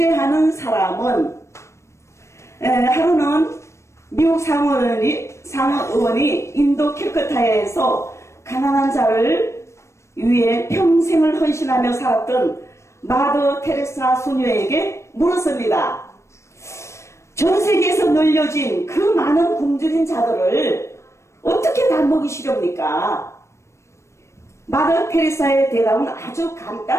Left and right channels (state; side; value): late; right; 0.13 ms